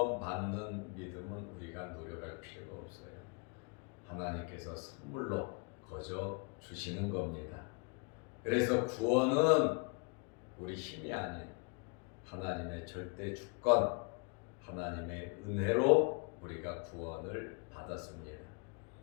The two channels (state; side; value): quieter; right; 34.7 dB